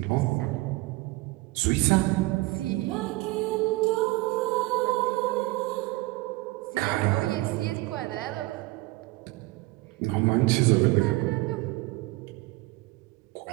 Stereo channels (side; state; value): left; quieter; 21.3 dB